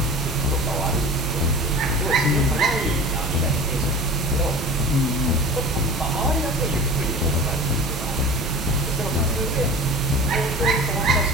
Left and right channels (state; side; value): normal; both; correlation 0.36